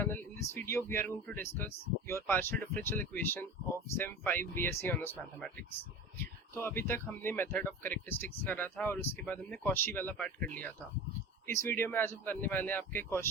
In this video, we are going to discuss your partial differential equation of Sem 5 BSc Honors Mathematics. तो अभी तक हमने method of characteristics करा था और उसके बाद हमने कॉशी वाला पार्ट कर लिया था। इस वीडियो में आज हम करने वाले हैं आपके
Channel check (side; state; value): both; normal; correlation 0.32